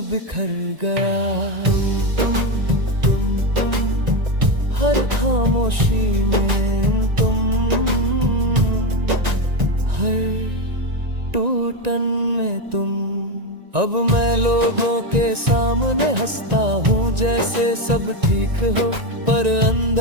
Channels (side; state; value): left; late; 1.9 ms